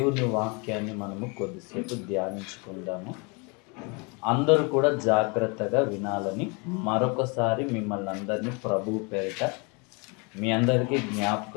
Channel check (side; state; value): right; quieter; 31.1 dB